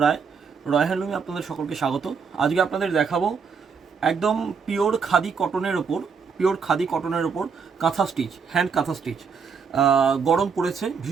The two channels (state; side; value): quieter; left; 5.9 dB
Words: রায়। রয় হ্যান্ডলুমে আপনাদের সকলকে স্বাগত। আজকে আপনাদের দেখাবো একদম পিওর খাদি কটনের ওপর কাঁথা স্টিচ, হ্যান্ড কাঁথা স্টিচ। গরম পড়েছে,